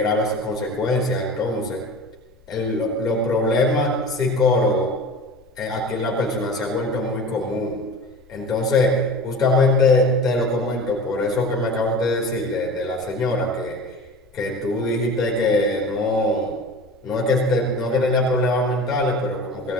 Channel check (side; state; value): left; noise; rumble, 30 dB below the sound